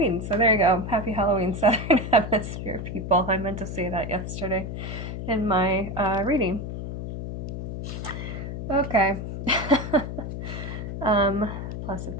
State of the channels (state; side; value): noise; left; hum, 6 dB below the sound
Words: So there you go. Happy Halloween, Southern Hemisphere people. I meant to say that yesterday in my reading. Okay. Plus